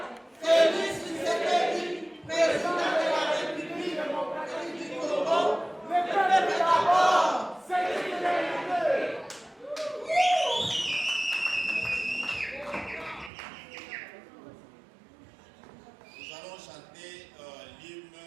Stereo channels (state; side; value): drops out; left; at 13.3 s